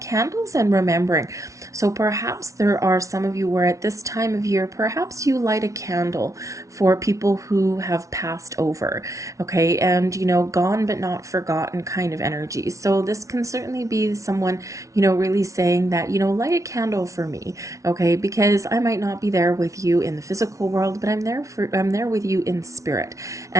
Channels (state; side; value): late; left; 0.15 ms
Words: and remembering. So perhaps there are some of you where at this time of year, perhaps you light a candle for people who have passed over, okay, and gone but not forgotten kind of energy. So this can certainly be someone, really saying that, light a candle for me, okay, because I might not be there with you in the physical world, but I'm there with you in spirit.